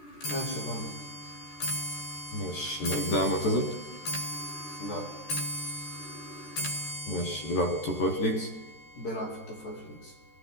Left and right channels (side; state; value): right; late; 13 ms